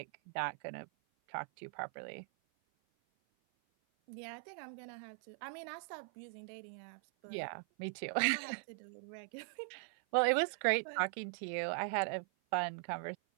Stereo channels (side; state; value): left; silent; 51 dB below the other